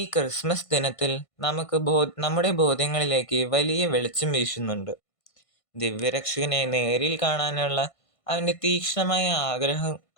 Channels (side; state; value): right; late; 1.5 ms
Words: ക്രിസ്മസ് ദിനത്തിൽ നമുക്ക് നമ്മുടെ ബോധ്യങ്ങളിലേക്ക് വലിയ വെളിച്ചം വീശുന്നുണ്ട്. ദിവ്യരക്ഷകനെ നേരിൽ കാണാനുള്ള അവൻ്റെ തീക്ഷ്ണമായ